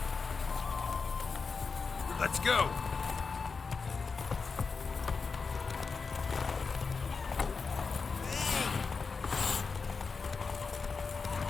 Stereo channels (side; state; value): right; quieter; 4.8 dB